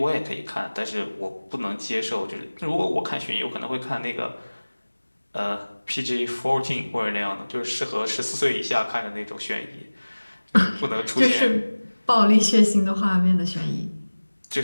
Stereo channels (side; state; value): both; inverted; correlation -1.00